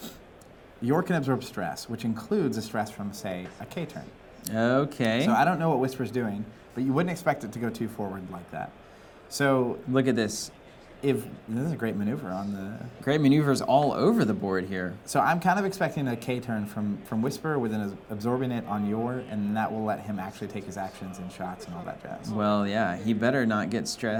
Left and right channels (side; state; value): both; identical; correlation 1.00